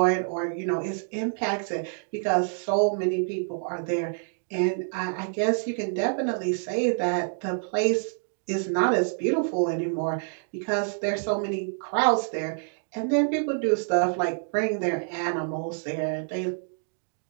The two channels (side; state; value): left; silent; 60 dB below the other